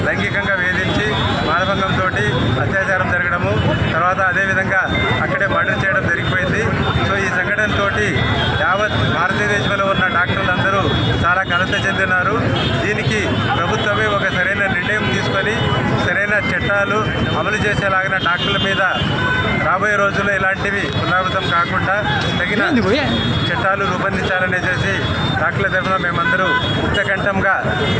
లైంగికంగా వేధించి మానభంగంతో అత్యాచారం జరగడము, తర్వాత అదేవిధంగా అక్కడే మర్డర్ చేయడం జరిగిపోయింది. సో ఈ సంఘటనతో యావత్ భారతదేశంలో ఉన్న డాక్టర్లందరూ చాలా కలత చెందినారు. దీనికి ప్రభుత్వమే ఒక సరైన నిర్ణయం తీసుకొని సరైన చట్టాలు అమలు చేసేలాగిన డాక్టర్ల మీద రాబోయే రోజుల్లో ఇలాంటివి పునరావృతం కాకుండా తగిన చట్టాలు రూపొందించాలని చేసి డాక్టర్ల తరఫున మేమందరూ ముక్తకంఠంగా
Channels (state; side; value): identical; both; correlation 1.00